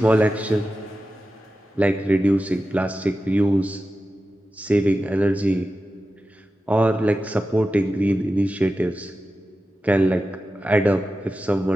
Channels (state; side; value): normal; both; correlation 0.93